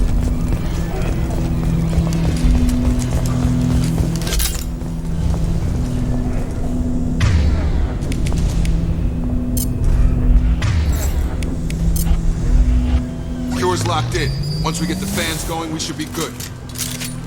Cure's locked in. Once we get the fans going, we should be good.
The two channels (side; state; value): both; identical; correlation 1.00